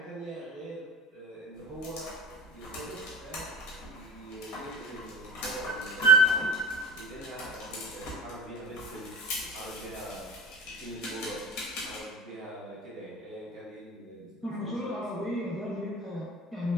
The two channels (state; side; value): normal; both; correlation 0.33